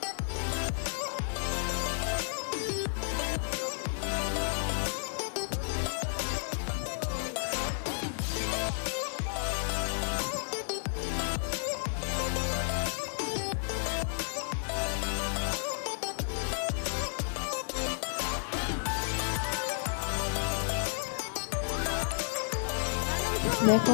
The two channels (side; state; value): right; silent; digital silence